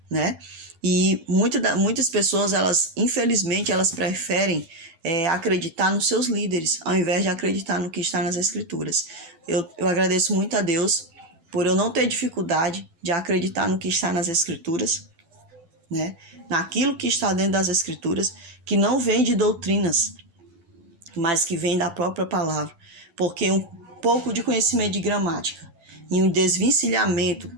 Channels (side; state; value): left; late; 12 ms